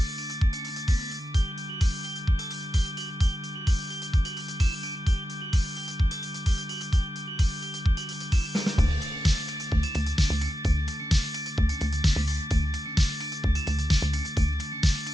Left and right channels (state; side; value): normal; both; correlation 0.89